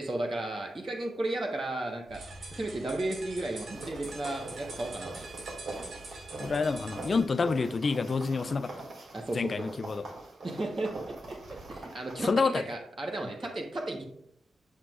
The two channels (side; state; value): both; normal; correlation 0.89